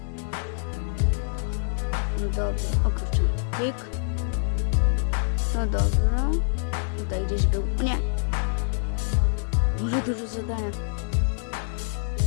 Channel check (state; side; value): silent; right; 61 dB below the other